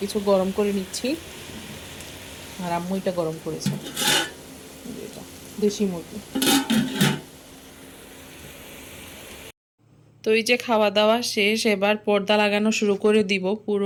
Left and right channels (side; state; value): both; identical; correlation 1.00